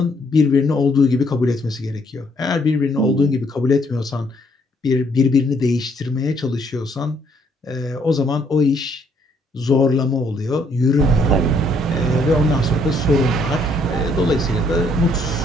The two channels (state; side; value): normal; both; correlation 0.68